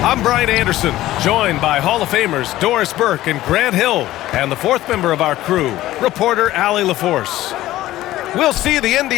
I'm Brian Anderson, joined by Hall of Famers Doris Burke and Grant Hill, and the fourth member of our crew, reporter Allie LaForce. We'll see the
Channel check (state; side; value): quieter; right; 15.4 dB